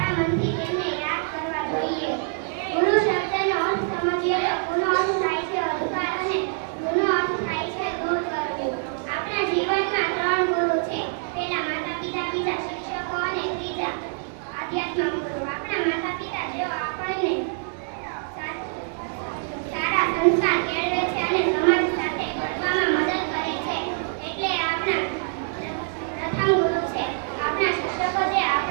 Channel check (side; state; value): left; silent; 62 dB below the other